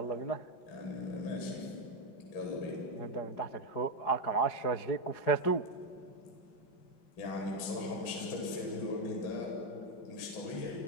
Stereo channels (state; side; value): late; right; 4.8 ms